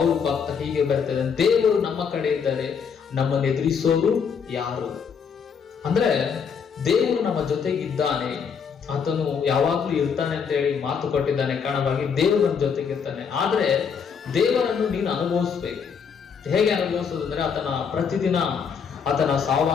ಭಕ್ತ ಹೀಗೆ ಬರಿತಾ ಇದ್ದಾನೆ, ದೇವರು ನಮ್ಮ ಕಡೆ ಇದ್ದಾರೆ, ನಮ್ಮನ್ನು ಎದುರಿಸೋರು ಯಾರು? ಅಂದ್ರೆ ದೇವರು ನಮ್ಮ ಜೊತೆಗಿದ್ದಾನೆ, ಆತನು ಯಾವಾಗ್ಲೂ ಇರ್ತಾನೆ ಅಂತ ಹೇಳಿ ಮಾತು ಕೊಟ್ಟಿದ್ದಾನೆ. ಕಾರಣವಾಗಿ ದೇವರು ನಮ್ಮ ಜೊತೆಗಿರ್ತಾನೆ. ಆದ್ರೆ ದೇವರನ್ನು ನೀನು ಅನುಭವಿಸ್ಬೇಕು. ಹೇಗೆ ಅನುಭವಿಸೋದು ಅಂದ್ರೆ, ಪ್ರತಿದಿನ ಆತನ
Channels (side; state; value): right; quieter; 6.5 dB